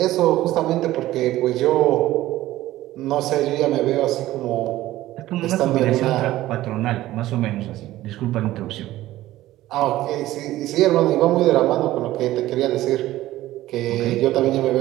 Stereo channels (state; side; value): quieter; left; 15.5 dB